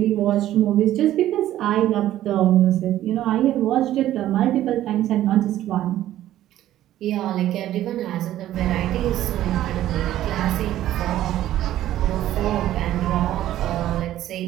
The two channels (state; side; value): quieter; left; 13.2 dB